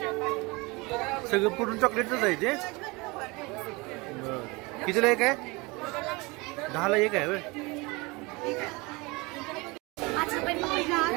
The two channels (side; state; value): left; quieter; 25.4 dB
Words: सगळं पूर्ण चॉकलेटच आहे ते कितीला एक आहे 10ला एक आहे होय